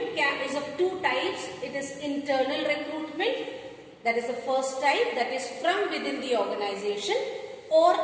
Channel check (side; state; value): both; identical; correlation 1.00